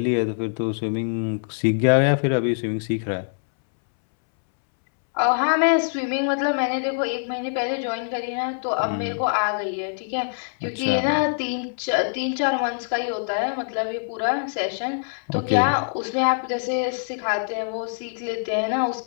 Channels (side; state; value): right; silent; 63 dB below the other